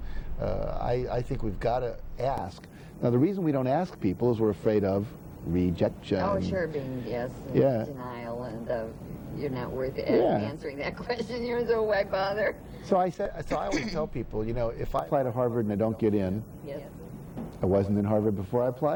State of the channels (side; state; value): both; identical; correlation 1.00